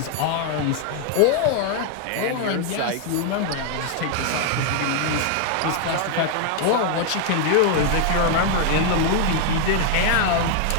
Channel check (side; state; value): both; different; correlation 0.00